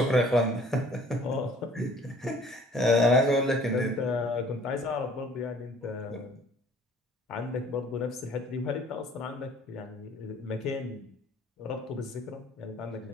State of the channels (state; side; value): normal; both; correlation 0.54